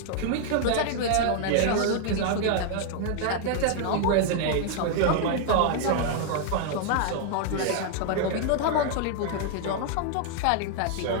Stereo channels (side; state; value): both; different; correlation 0.00